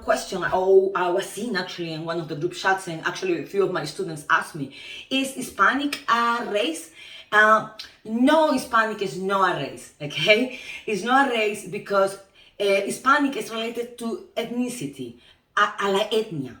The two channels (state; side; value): identical; both; correlation 1.00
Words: I was seeing actually in one of the group chats, and actually a few of my students asked me, is Hispanic a race? No, Hispanic is not a race, okay? It's not a race because Hispanic is related to ethnicity. A la etnia